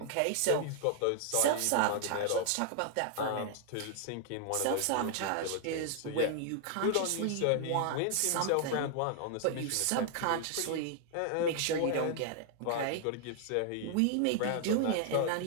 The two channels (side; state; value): both; different; correlation 0.00